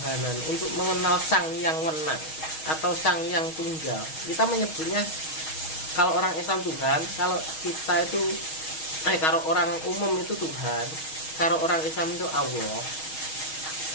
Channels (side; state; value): right; late; 6.3 ms